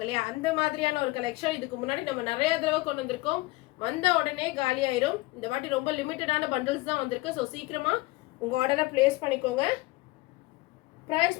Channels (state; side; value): quieter; right; 21.1 dB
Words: இல்லையா, அந்த மாதிரியான ஒரு கலெக்ஷன். இதுக்கு முன்னாடி நம்ம நிறைய தடவை கொண்டு வந்திருக்கோம். வந்த உடனே காலி ஆயிரும். இந்த வாட்டி ரொம்ப லிமிட்டடான பண்டில்ஸ் தான் வந்திருக்கு. ஸோ சீக்கிரமா உங்க ஆர்டரை பிளேஸ் பண்ணிக்கோங்க.